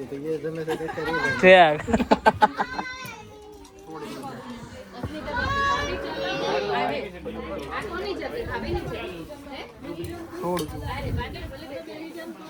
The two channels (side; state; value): both; identical; correlation 1.00